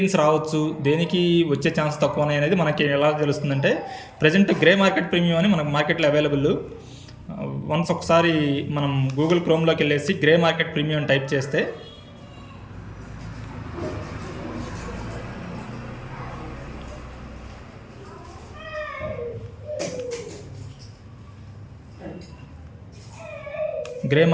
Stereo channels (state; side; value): identical; both; correlation 1.00